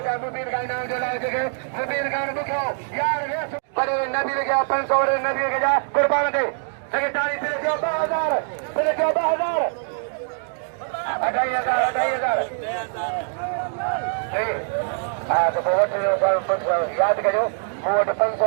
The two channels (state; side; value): silent; left; digital silence